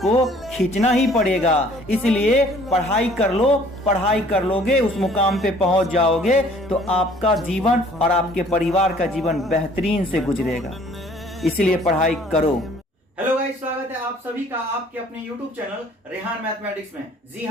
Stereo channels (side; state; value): both; normal; correlation 0.55